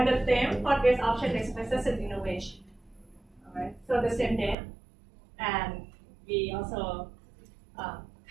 the theme for this option is business and innovation. All right. So the same day, and we also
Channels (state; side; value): drops out; left; at 4.5 s